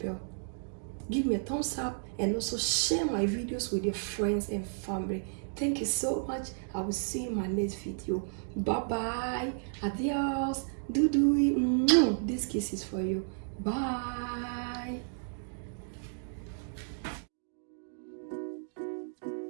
give me a thumbs up, and also share my videos with your friends and family. Thank you so much. I will see you in my next video. Bye bye. Adios. This kiss is for you. Bye.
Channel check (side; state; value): left; silent; digital silence